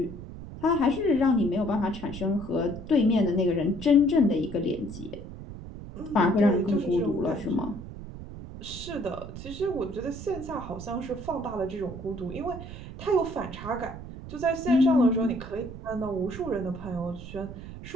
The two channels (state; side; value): noise; right; rumble, 11 dB below the sound